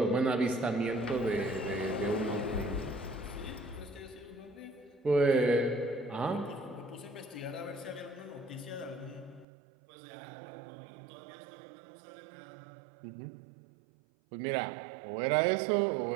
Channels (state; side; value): drops out; left; at 9.5 s